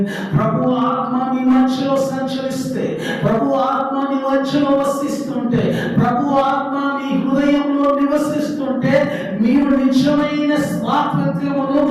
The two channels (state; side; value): identical; both; correlation 1.00